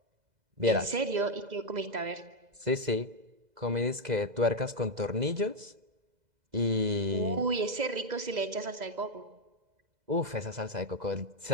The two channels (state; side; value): late; left; 2.0 ms